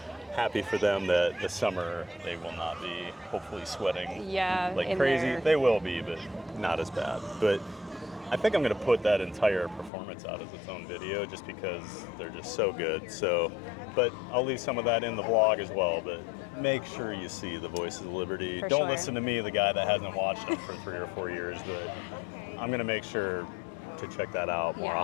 happy for them that this summer they will not be hopefully sweating like in crazy. their- They will be, but not as bad. But I think I'm going to put that entire performance out as its own video just because they're just so good. So, but I'll leave some of that in the vlog as well. But make sure you see The Voices of Liberty. For Don't sure. listen to me, the guy that hasn't watched them for 3 or 4 years. But I'm going to make sure to check that out more Yeah.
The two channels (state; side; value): drops out; right; at 9.9 s